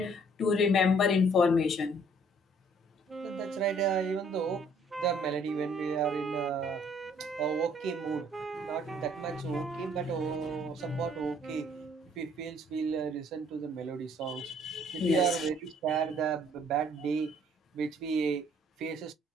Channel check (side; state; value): both; normal; correlation 0.61